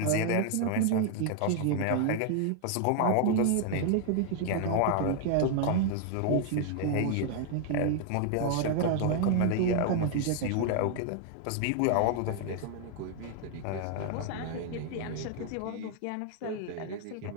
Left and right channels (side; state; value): both; different; correlation 0.00